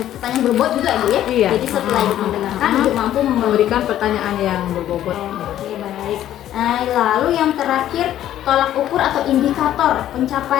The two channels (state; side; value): quieter; right; 12.1 dB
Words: pertanyaan berbobot juga, Bu ya? Iya. Jadi setelah Ibu mendengarkan, Ibu mampu memberikan pertanyaan yang berbobot. Oke, baik. Nah, lalu yang terakhir, tolak ukur atau indikator